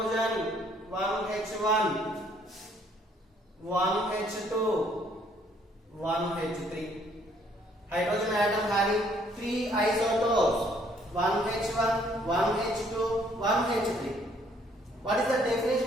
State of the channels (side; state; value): both; normal; correlation 0.64